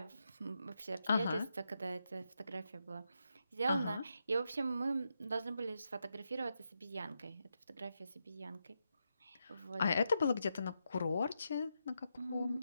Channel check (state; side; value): inverted; both; correlation -0.84